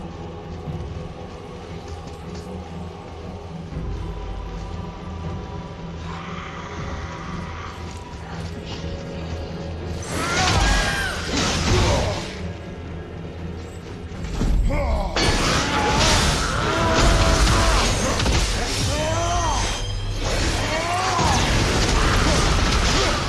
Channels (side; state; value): both; identical; correlation 1.00